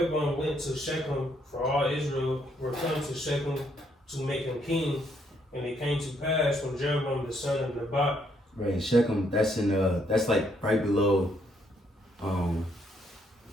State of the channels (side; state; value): both; normal; correlation 0.72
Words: went to Shechem, for all Israel were come to Shechem to make him king. And it came to pass when Jeroboam the son of Nebat. Right, in Shechem, that's that's like right below.